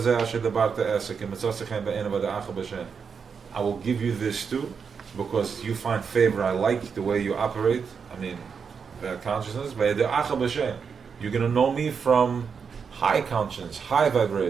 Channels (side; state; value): left; quieter; 6.1 dB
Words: zeh asher dabarte esek, imitzosechem be'ena v'da'acha b'shem. I will give you this too, because you find favor. I like the way you operate. I mean, that consciousness. V'da'acha b'shem. You're going to know me from high conscience, high